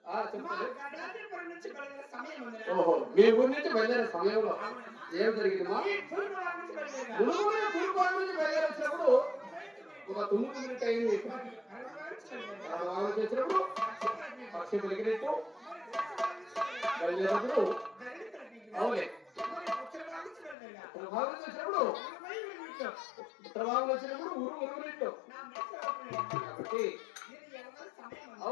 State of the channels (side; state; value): right; drops out; at 20.6 s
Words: చెప్పండి. ఓహో మీ ఊరి నుంచి బయలుదేరే సమయంలో ఏం జరిగిందమ్మా? నుంచి బయలుదేరేసినప్పుడు ఒక 9 మినిట్ అయింది. చేసినప్పుడు పక్షి పెరిగినట్టు బయలుదేరినప్పుడు అవులే ప్రభావం చేసినప్పుడు ప్రభావం వచ్చినప్పుడు ఊరు ఉరుగునట్టు కాబట్టి